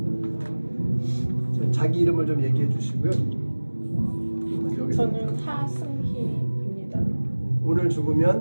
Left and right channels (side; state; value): both; inverted; correlation -1.00